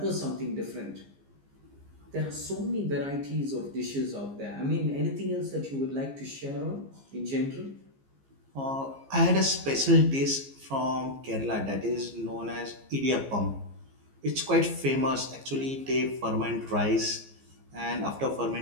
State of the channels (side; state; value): left; late; 15 ms